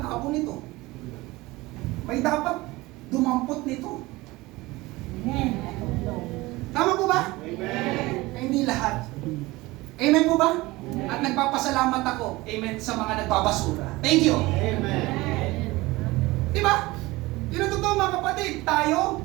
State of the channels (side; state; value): left; quieter; 20.6 dB